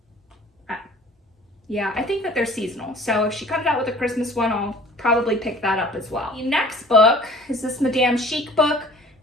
Yeah, I think that they're seasonal. So if she comes out with a Christmas one, I'll probably pick that up as well. The next book is this Madame Chic book.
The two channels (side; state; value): both; normal; correlation 0.49